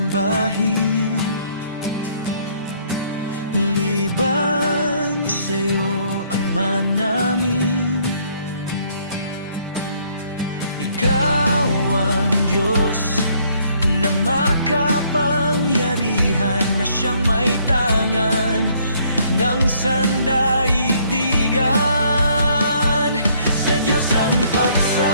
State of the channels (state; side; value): inverted; both; correlation -0.65